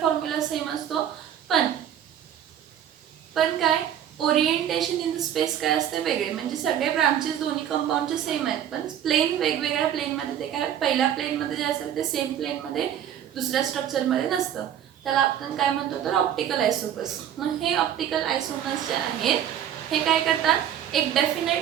सेम असतो, पण काय ओरिएंटेशन इन द स्पेस काय असते वेगळे. म्हणजे सगळे ब्रांचेस दोन्ही कंपाऊंडचे सेम आहेत, पण प्लेन वेगवेगळ्या प्लेनमध्ये ते काय पहिल्या प्लेनमध्ये जे असेल ते सेम प्लेनमध्ये दुसऱ्या स्ट्रक्चरमध्ये नसतं. त्याला आपण काय म्हणतो तर ऑप्टिकल आयसोमर्स. मग हे ऑप्टिकल आयसोमर्स जे आहेत हे काय करतात, एक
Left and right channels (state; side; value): quieter; left; 10.2 dB